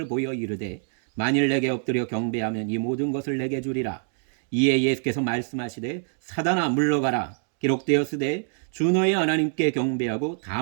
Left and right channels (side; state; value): left; silent; 56 dB below the other